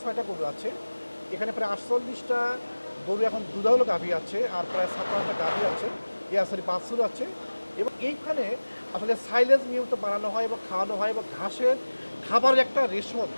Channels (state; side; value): inverted; both; correlation -1.00